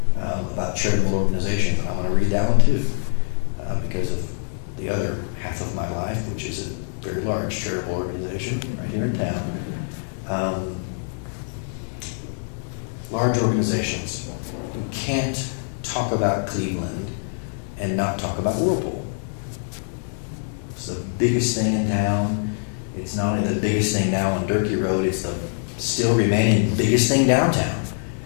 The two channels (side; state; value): right; silent; digital silence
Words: about charitable organizations. And I want to read that one too, because of the other half of my life, which is a very large charitable organization right here in town. Large organizations. You can't talk about Cleveland and not talk about Whirlpool. It's the biggest thing in town. It's not only the biggest thing now on Durkee Road, it's the still remaining biggest thing downtown.